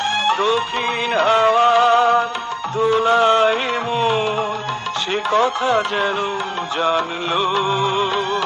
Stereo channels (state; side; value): identical; both; correlation 1.00